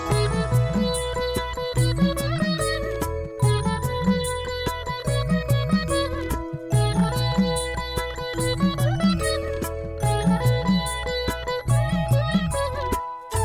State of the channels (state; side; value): identical; both; correlation 1.00